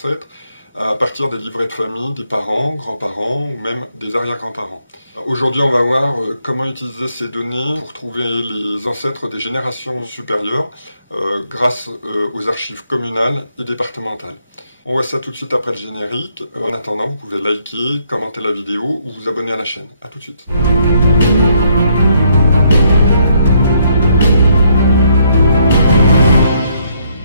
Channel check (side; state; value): both; inverted; correlation -0.72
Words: à partir des livrets de famille des parents, grands-parents ou même des arrière-grands-parents. Aujourd'hui on va voir comment utiliser ces données pour trouver les ancêtres des générations supérieures grâce aux archives communales et départementales. On voit ça tout de suite après le générique. En attendant, vous pouvez liker, commenter la vidéo ou vous abonner à la chaîne. A tout de suite.